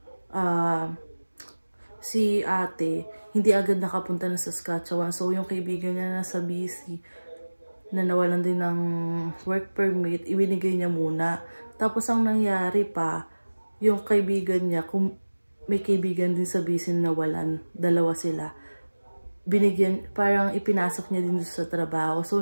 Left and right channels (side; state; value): both; inverted; correlation -1.00